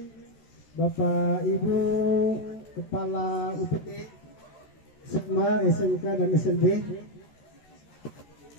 Bapak Ibu Kepala UPT SMA SMK dan SLB,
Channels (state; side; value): late; right; 13 ms